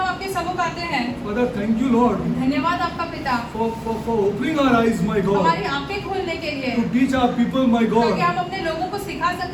आपके सम्मुख आते हैं। Father, thank you, Lord, धन्यवाद आपका पिता, for opening our eyes, my God, हमारी आंखें खोलने के लिए, to teach our people, my ताकि God, हम अपने लोगों को सिखा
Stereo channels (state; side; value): identical; both; correlation 1.00